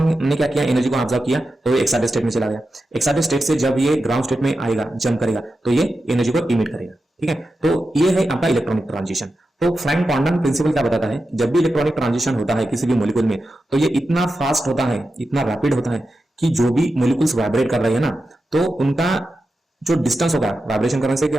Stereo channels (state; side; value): normal; both; correlation 0.91